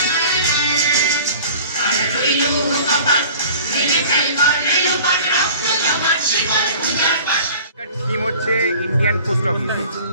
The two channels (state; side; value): inverted; both; correlation -0.44